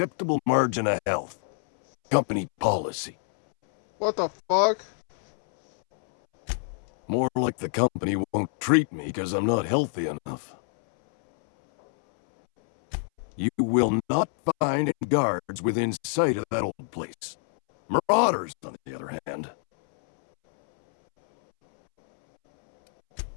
margin of health. Company policy. What the fuck? More like the company won't treat me because I'm not healthy enough. You will not find any guards within sight of that old place. Marauders, on the other hand.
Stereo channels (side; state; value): right; silent; 61 dB below the other